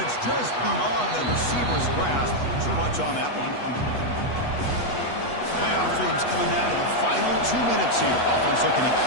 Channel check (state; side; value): late; right; 8.2 ms